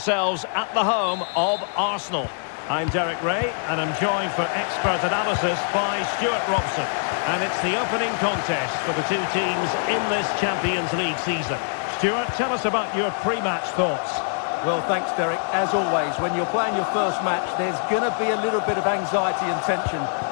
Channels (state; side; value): silent; right; digital silence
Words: at the home of Arsenal. I'm Derek Ray, and I'm joined for expert analysis by Stuart Robson. And it's the opening contest for the two teams in this Champions League season. Stuart, tell us about your pre-match thoughts. Well, thanks, Derek. As always, when you're playing your first match, there's going to be a little bit of anxiety and tension.